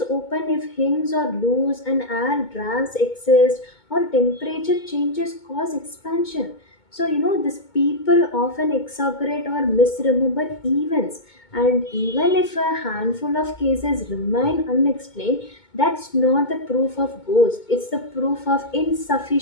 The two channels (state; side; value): late; right; 2.2 ms